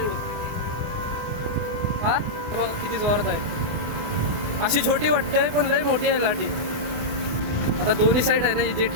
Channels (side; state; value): left; late; 24 ms